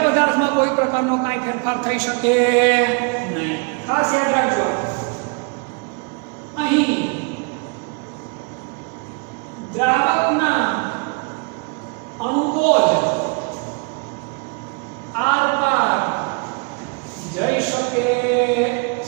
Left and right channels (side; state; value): left; quieter; 35.2 dB